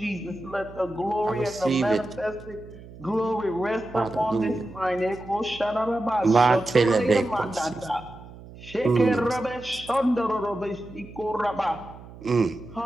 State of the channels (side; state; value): right; noise; hum, 17 dB below the sound